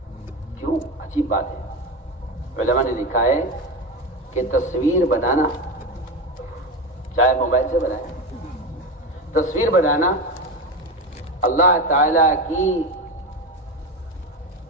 کیوں؟ عجیب بات ہے۔ علماء نے لکھا ہے کہ تصویر بنانا، چاہے موبائل سے بنائے، تصویر بنانا اللہ تعالی کی،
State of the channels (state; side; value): normal; both; correlation 0.19